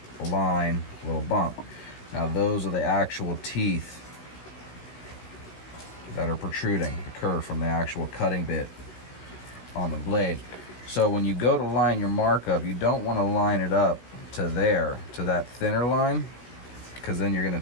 a line, a little bump. Now those are the actual teeth that are protruding, the kerf from the actual cutting bit on the blade. So when you go to line your mark up, you don't want to line it up to there, to that thinner line, because then you're going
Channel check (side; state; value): right; late; 16 ms